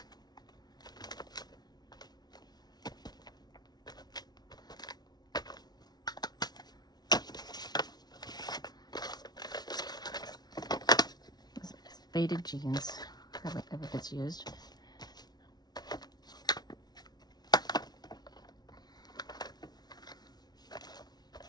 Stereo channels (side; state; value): right; late; 0.19 ms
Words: Faded jeans. Hardly ever gets used.